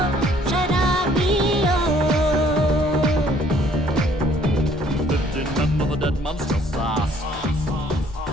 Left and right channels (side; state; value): both; normal; correlation 0.61